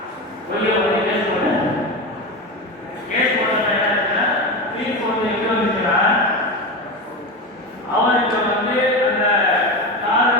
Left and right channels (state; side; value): normal; both; correlation 0.21